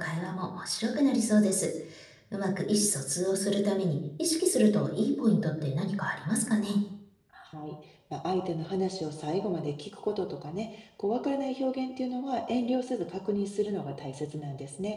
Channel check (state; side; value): identical; both; correlation 1.00